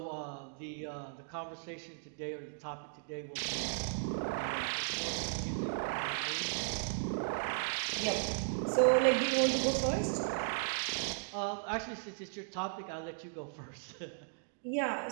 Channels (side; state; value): left; silent; digital silence